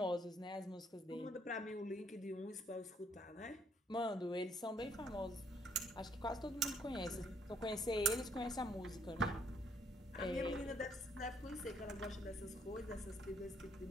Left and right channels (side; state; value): both; normal; correlation 0.67